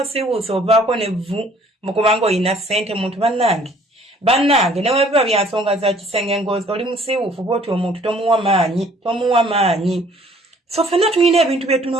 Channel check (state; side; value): normal; both; correlation 0.58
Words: osiiwuusa ovaako nevvu mukubanga oyina ssente muntu bannange ne webiba bya nsonga za kisenge ngozi oli musiiwuufu bw'oti omuntu tomuwa maanyi. So ffenna tulina ebintu bye